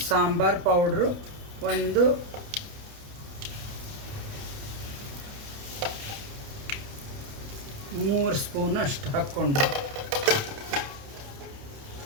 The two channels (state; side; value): late; left; 28 ms